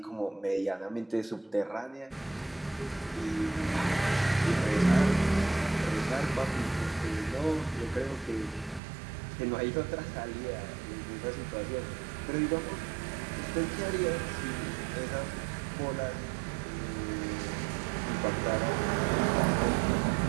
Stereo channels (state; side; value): drops out; left; at 8.8 s